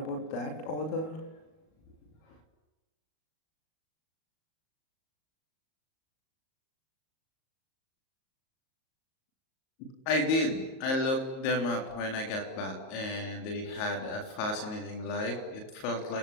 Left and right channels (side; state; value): right; late; 38 ms